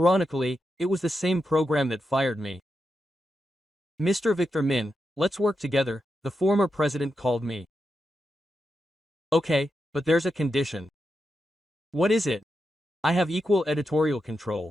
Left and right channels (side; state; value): both; normal; correlation 0.87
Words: it was the same program that fired me. Mr. Victor Min, let's work together, the former president called me. Okay, but there's a condition. What is it? I have equal editorial